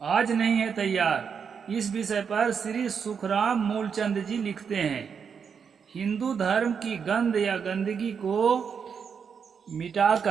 आज नहीं है तैयार। इस विषय पर श्री सुखराम मूलचंद जी लिखते हैं, हिंदू धर्म की गंध या गंदगी को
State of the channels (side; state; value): left; quieter; 6.6 dB